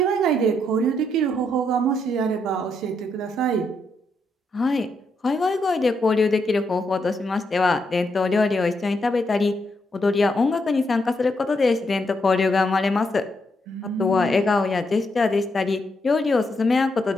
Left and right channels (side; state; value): both; normal; correlation 0.79